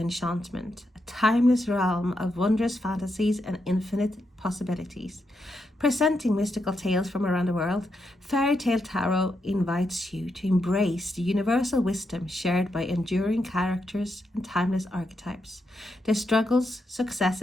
a timeless realm of wondrous fantasies and infinite possibilities. Presenting mystical tales from around the world, Fairy Tale Tarot invites you to embrace the universal wisdom shared by enduring characters and timeless archetypes. Their struggles,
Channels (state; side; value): normal; both; correlation 0.83